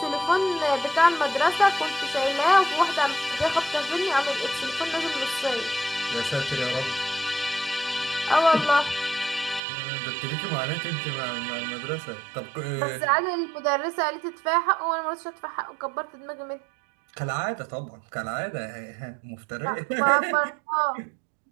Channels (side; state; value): left; drops out; at 9.6 s